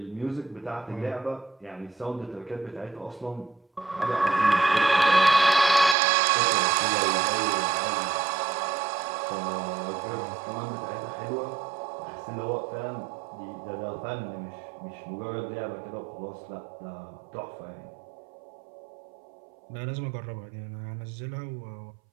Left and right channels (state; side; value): drops out; left; at 6.0 s